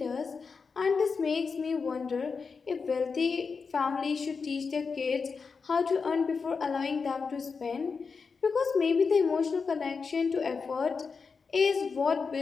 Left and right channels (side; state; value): right; quieter; 5.1 dB